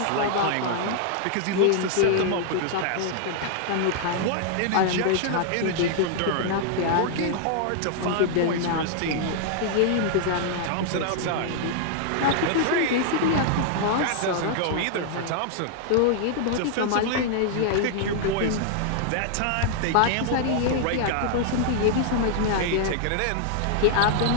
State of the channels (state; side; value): different; both; correlation -0.01